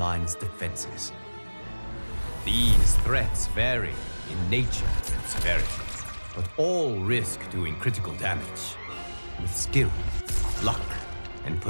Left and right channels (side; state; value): both; inverted; correlation -1.00